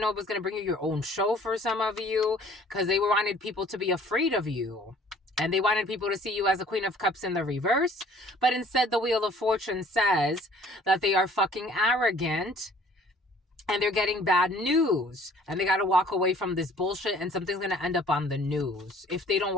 know it was going to bring you your own show for some of you, because they wanted people to be afraid of you. And they wanted people to see you as a Queen of Cups in the reverse. But instead, the Wheel of Fortune says that they are fucking arrogant and they're getting bad news, and they got to walk away from this bullshit, and something's going to end up on the news. If they don't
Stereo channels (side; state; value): both; normal; correlation 0.55